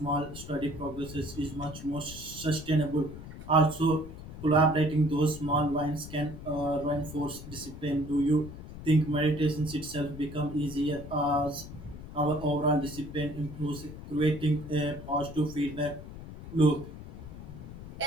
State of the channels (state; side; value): noise; left; rumble, 12 dB below the sound